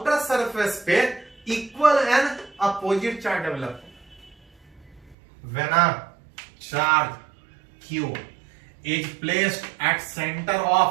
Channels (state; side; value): drops out; left; at 5.2 s